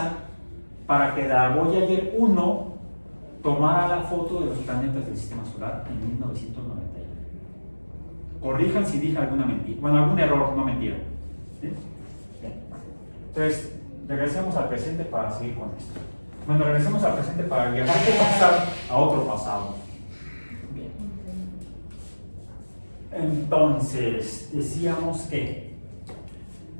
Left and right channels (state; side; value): inverted; both; correlation -1.00